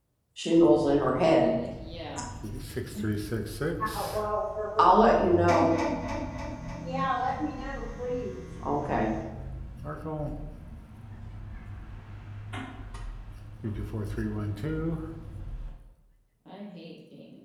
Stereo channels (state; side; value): identical; both; correlation 1.00